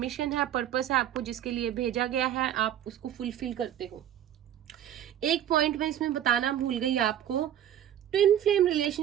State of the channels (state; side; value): quieter; left; 11.0 dB